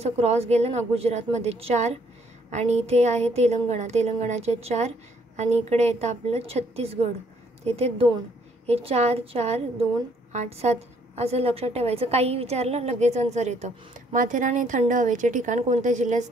क्रॉस गेलं ना गुजरातमध्ये 4 आणि इथे आहे तेलंगणाचे 4 आणि इकडे येतं आपलं छत्तीसगड. तिथे 2, हे 4 4 2 8 7 असं लक्षात ठेवायचं. काही विचारलं लगेच आन्सर येतं. माथेरान हे थंड हवेचे ठिकाण कोणत्या जिल्ह्यात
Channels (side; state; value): both; normal; correlation 0.66